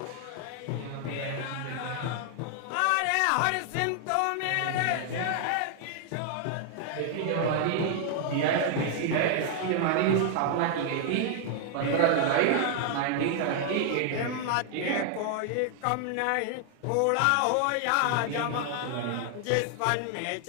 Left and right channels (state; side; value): different; both; correlation 0.00